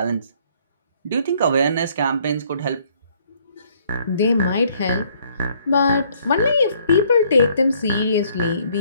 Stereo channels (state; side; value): inverted; both; correlation -0.64